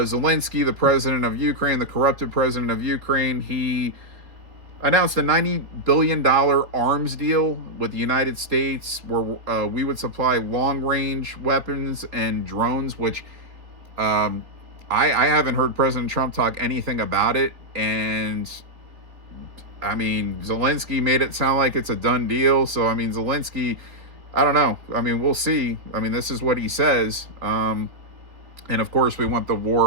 the president of Ukraine, the corrupted president of Ukraine, he announced a $90 billion arms deal with the United States where we would supply long-range weapons and drones, which I haven't heard President Trump talk anything about it. And I mean, Zelensky made it sound like it's a done deal. So, I mean, Zelensky, I don't know. I mean, we'll see. I mean, this is what he says. And of course, we want the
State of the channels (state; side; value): late; left; 3.7 ms